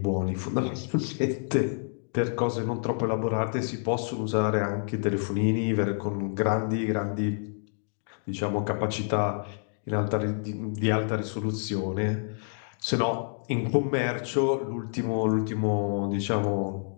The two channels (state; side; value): silent; right; digital silence